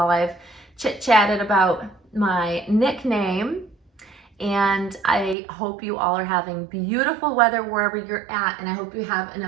I've chit-chatted about my nickname. And I hope you all are having beautiful weather wherever you're at. And I hope you have an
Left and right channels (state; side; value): drops out; left; at 5.4 s